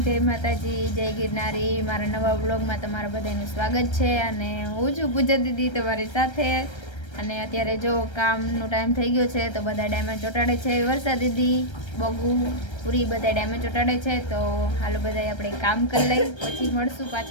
જય માતાજી, જય ગિરનારી. મારા નવા વ્લોગમાં તમારા બધાનું સ્વાગત છે. અને હું છું પૂજા દીદી તમારી સાથે. અને અત્યારે જો કામનો ટાઈમ થઈ ગયો છે તો બધા ડાયમંડ ચોંટાડે છે. વર્ષા દીદી, બગુ, પૂરી બધા ડાયમંડ ચોંટાડે છે. તો હાલો બધા આપણે કામ કરી લઈ, પછી મળશું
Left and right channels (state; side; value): late; right; 1.3 ms